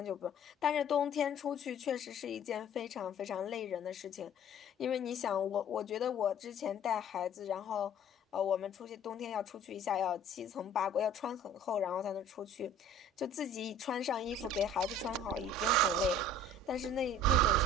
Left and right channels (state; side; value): normal; both; correlation 0.49